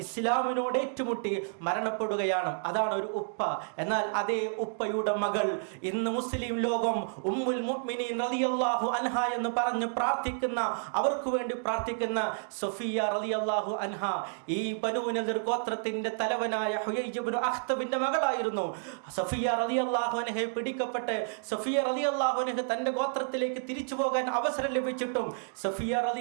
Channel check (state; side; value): silent; left; digital silence